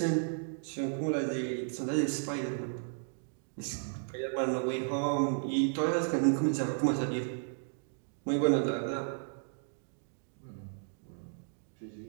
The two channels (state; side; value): silent; left; digital silence